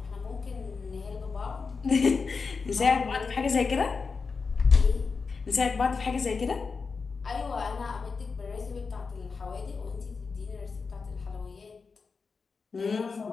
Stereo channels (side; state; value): right; quieter; 4.8 dB